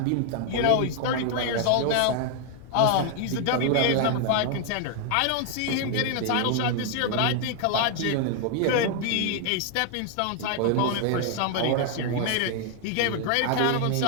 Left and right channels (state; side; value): different; both; correlation 0.00